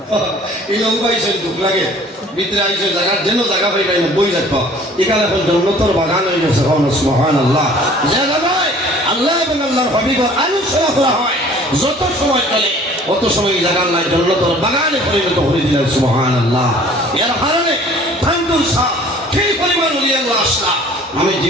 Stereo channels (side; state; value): both; normal; correlation 0.51